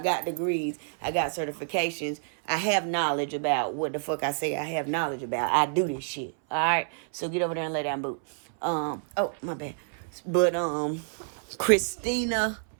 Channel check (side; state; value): left; silent; 59 dB below the other